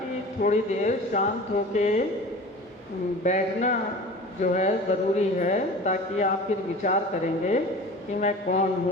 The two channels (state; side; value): normal; both; correlation 0.38